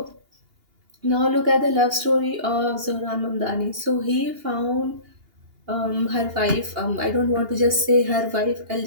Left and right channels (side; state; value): left; late; 2.8 ms